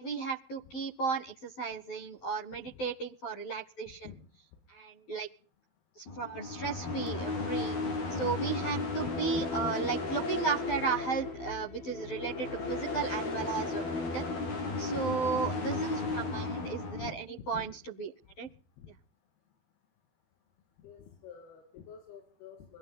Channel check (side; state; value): right; late; 12 ms